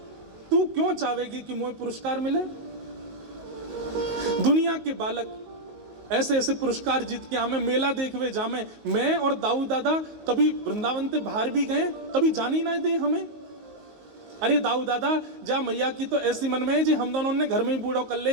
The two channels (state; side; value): late; left; 19 ms